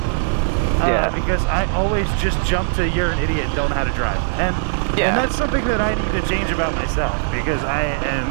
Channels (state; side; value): silent; left; digital silence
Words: Because I always just jump to you're an idiot and don't know how to drive. And that's something that I need to change about myself because I